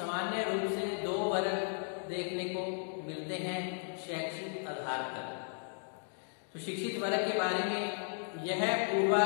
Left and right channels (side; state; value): right; silent; 54 dB below the other